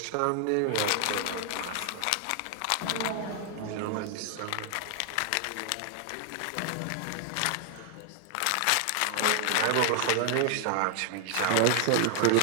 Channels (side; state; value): both; different; correlation 0.00